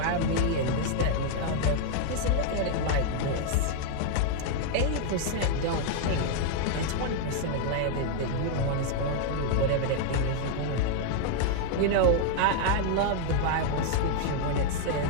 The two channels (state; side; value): different; both; correlation 0.00